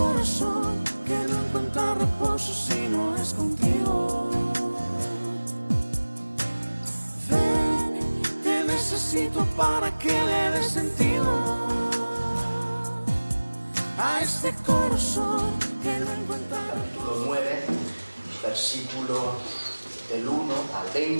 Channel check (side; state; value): both; inverted; correlation -1.00